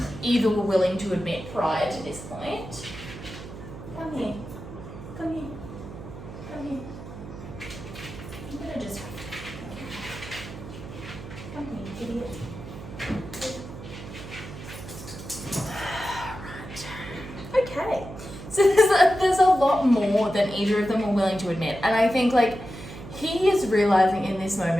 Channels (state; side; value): noise; right; hum, 12 dB below the sound